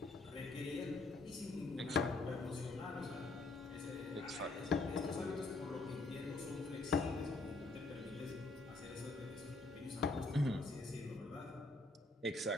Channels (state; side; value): quieter; right; 3.1 dB